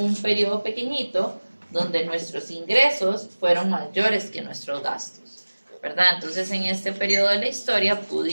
periodo pequeñito donde nuestros ingresos fueron mayores que nuestros gastos, ¿verdad? Entonces en este periodo de la historia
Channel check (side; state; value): both; inverted; correlation -1.00